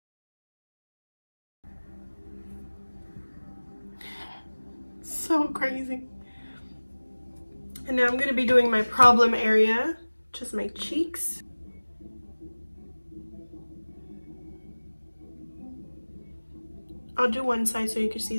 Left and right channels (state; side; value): inverted; both; correlation -1.00